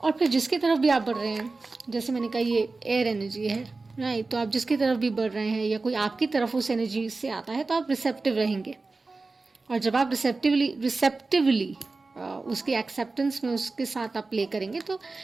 और फिर जिसकी तरफ भी आप बढ़ रहे हैं, जैसे मैंने कहा ये एयर एनर्जी है, राइट, तो आप जिसकी तरफ भी बढ़ रहे हैं या कोई आपकी तरफ उस एनर्जी से आता है, तो आप रिसेप्टिव रहेंगे। और जब आप रिसेप्टिवली उसकी एक्सेप्टेंस में उसके साथ आप प्ले करेंगे, तो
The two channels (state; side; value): quieter; left; 3.7 dB